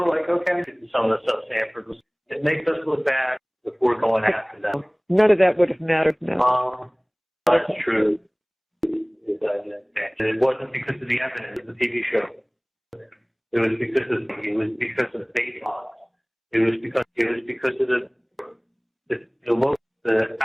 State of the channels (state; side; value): identical; both; correlation 1.00